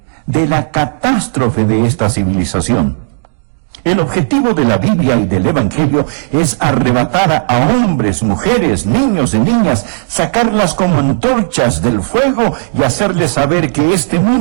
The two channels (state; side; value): silent; left; digital silence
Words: de la catástrofe de esta civilización. El objetivo de la Biblia y del Evangelio es arrebatar a hombres, mujeres, niños y niñas, sacarlas como antorchas del fuego y hacerles saber que este